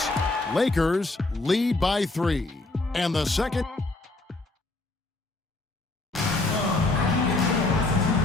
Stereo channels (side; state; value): right; quieter; 3.1 dB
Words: Lakers lead by 3. And the second.